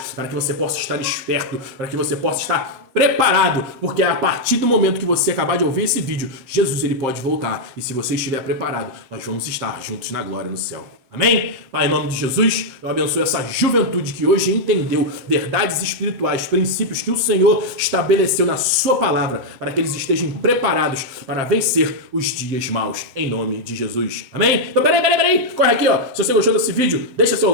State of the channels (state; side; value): late; left; 7.7 ms